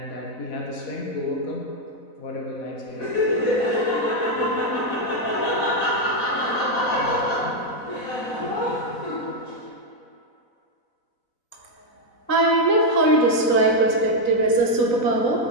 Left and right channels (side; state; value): right; late; 4.0 ms